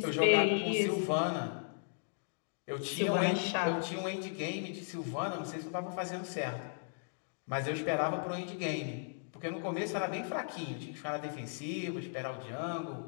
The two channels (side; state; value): right; silent; digital silence